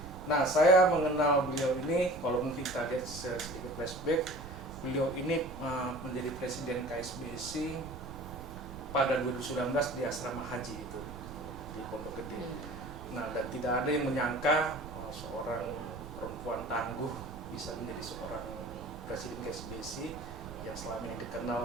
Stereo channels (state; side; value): noise; right; rumble, 12 dB below the sound